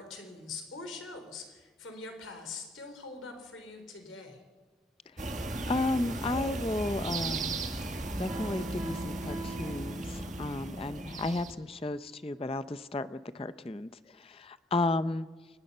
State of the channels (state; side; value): normal; both; correlation 0.68